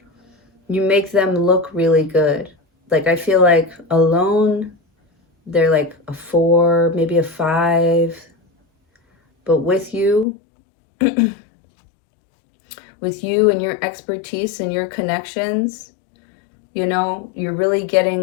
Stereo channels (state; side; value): drops out; right; at 10.2 s